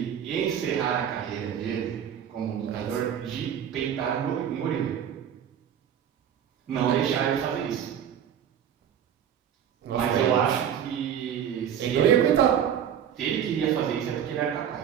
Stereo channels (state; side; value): quieter; left; 9.2 dB